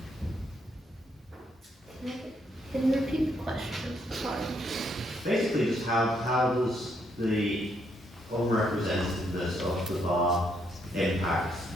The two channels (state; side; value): normal; both; correlation 0.74